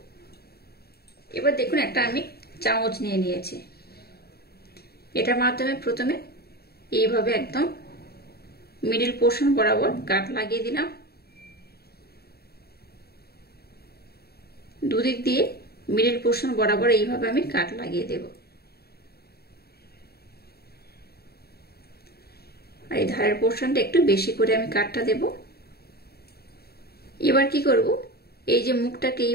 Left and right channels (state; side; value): late; right; 0.46 ms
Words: এবার দেখুন একটা আমি চামচ নিয়ে নিয়েছি। এটার মাধ্যমে প্রথমে এইভাবে একদম মিডিল পোর্শন বরাবর কাট লাগিয়ে দিলাম। দুদিক দিয়ে মিডিল পোর্শন বরাবর এইভাবে আমি কাট লাগিয়ে দেব। আর এই ধারের পোর্শনটা একটু বেশি করে আমি কাটটা দেব। এবার কি করব, এই যে মুখটাকে